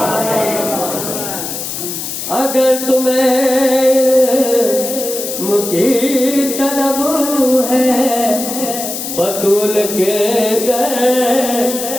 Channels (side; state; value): left; noise; hiss, 6 dB below the sound